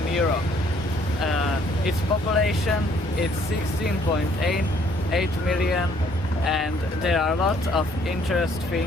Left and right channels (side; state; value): both; normal; correlation 0.63